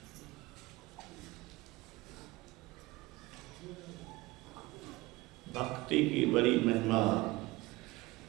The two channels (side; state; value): left; quieter; 20.8 dB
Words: भक्ति की बड़ी महिमा,